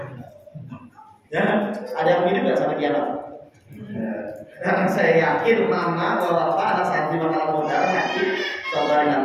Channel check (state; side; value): identical; both; correlation 1.00